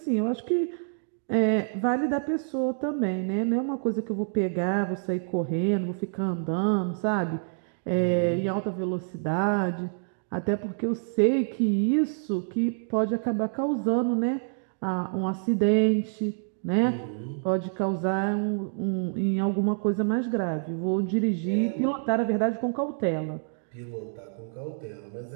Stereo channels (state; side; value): silent; left; digital silence